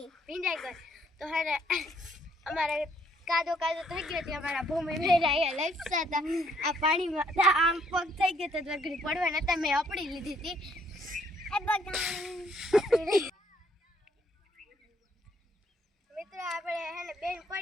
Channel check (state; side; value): normal; both; correlation 0.67